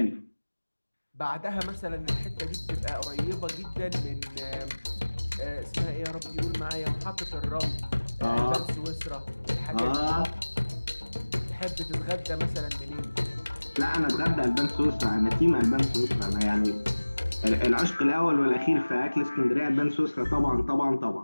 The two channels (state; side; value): inverted; both; correlation -1.00